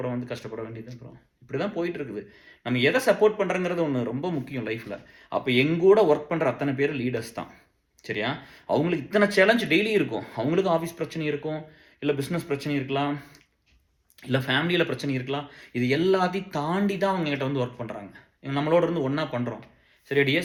வந்து கஷ்டப்பட வேண்டியது. அப்புறம் இப்படி தான் போயிட்டு இருக்குது. நம்ம எதை சப்போர்ட் பண்ணுறங்கிறது ஒன்று ரொம்ப முக்கியம் லைஃப்பில். அப்போ எங்கூட ஒர்க் பண்ணுற அத்தனை பேர் லீடர்ஸ் தான். சரியா? அவங்களுக்கு இத்தனை சேலஞ்ச் டெய்லி இருக்கும். அவங்களுக்கு ஆஃபீஸ் பிரச்சனை இருக்கும், இல்லை பிஸ்னஸ் பிரச்சனை இருக்கலாம், இல்லை ஃபேமிலியில் பிரச்சனை இருக்கலாம். இது எல்லாத்தையும் தாண்டி தான் அவங்க கிட்ட வந்து ஒர்க் பண்ணுறாங்க. நம்மளோட இருந்து ஒன்றா பண்ணுறோம். சரி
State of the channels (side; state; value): both; identical; correlation 1.00